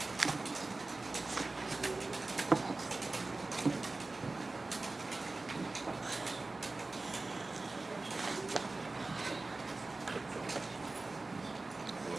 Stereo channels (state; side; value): quieter; left; 3.3 dB